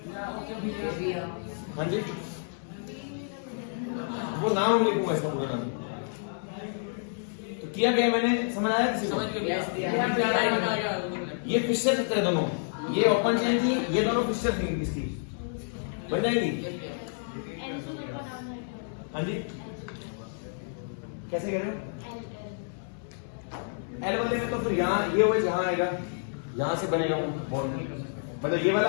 हाँ जी, वो नाम लिखूंगा इसका पूरा नाम। तो किया गया मैंने, समझ आया किसी को? ये फिशर की तरह दोनों, ये ओपन चेन थी, ये दोनों फिशर थी, इसकी बन जाएगी। हाँ जी, कैसे कह रहे हो? एल वाले में तो फिर यहाँ ये OH यहाँ आएगा, यहाँ से बनेगा बॉन्ड। मतलब ये वाला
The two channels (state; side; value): silent; right; digital silence